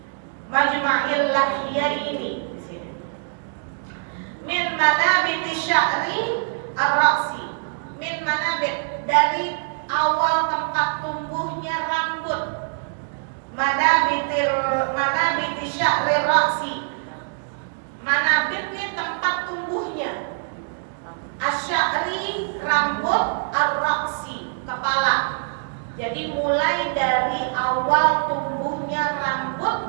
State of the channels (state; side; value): silent; left; digital silence